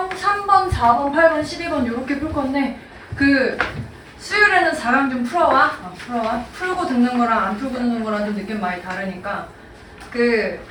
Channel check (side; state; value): both; identical; correlation 1.00